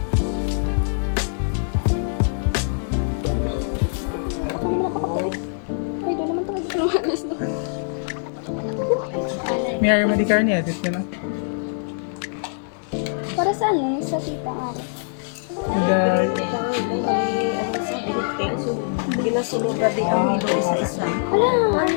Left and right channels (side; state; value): right; silent; digital silence